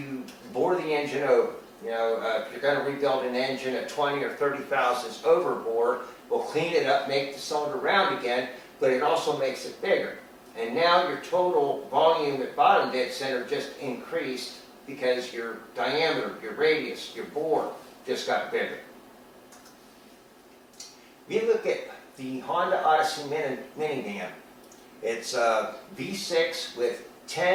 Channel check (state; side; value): identical; both; correlation 1.00